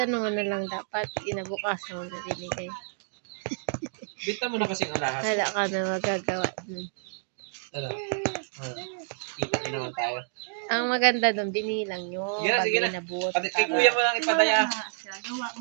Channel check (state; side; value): silent; left; digital silence